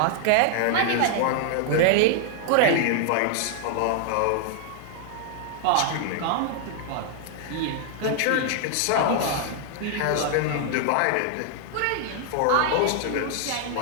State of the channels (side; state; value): both; different; correlation 0.00